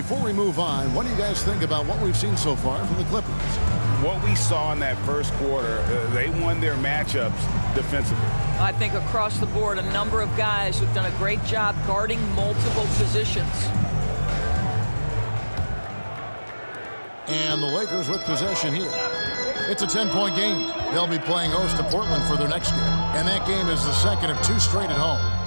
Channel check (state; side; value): inverted; both; correlation -1.00